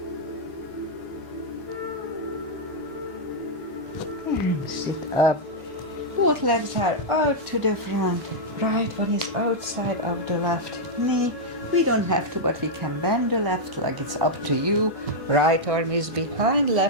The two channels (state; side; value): normal; both; correlation -0.04